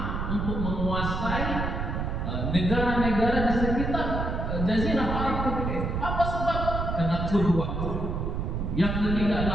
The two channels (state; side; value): noise; right; rumble, 2 dB below the sound